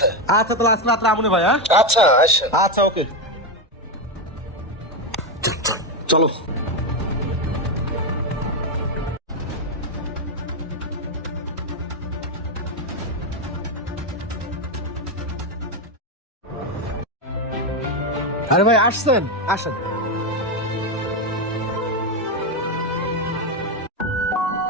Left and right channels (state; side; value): normal; both; correlation 0.09